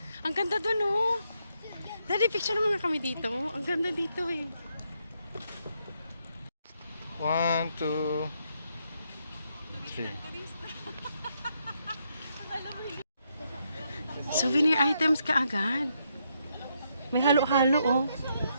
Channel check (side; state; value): both; inverted; correlation -0.77